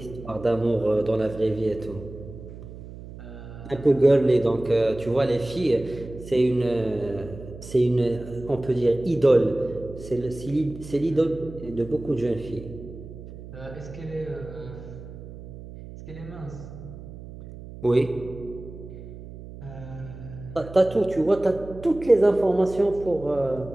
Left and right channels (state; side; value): noise; right; hum, 14 dB below the sound